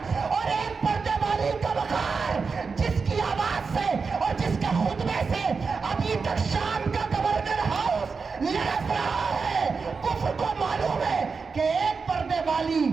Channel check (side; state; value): left; quieter; 4.9 dB